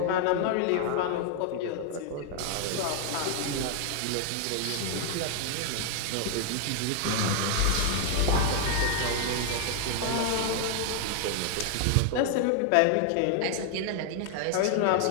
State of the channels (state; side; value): different; both; correlation 0.00